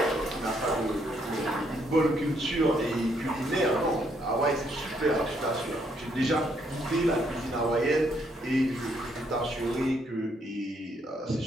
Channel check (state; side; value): normal; both; correlation 0.72